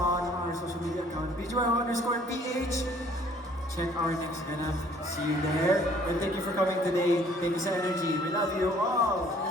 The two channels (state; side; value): normal; both; correlation 0.58